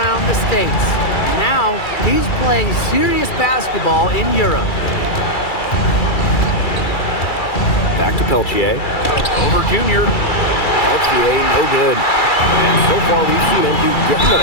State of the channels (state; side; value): late; right; 2.3 ms